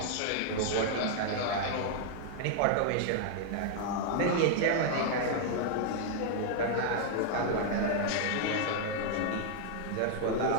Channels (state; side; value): different; both; correlation 0.00